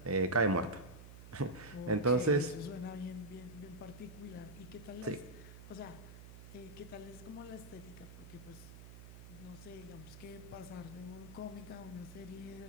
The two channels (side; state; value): right; noise; hum, 14 dB below the sound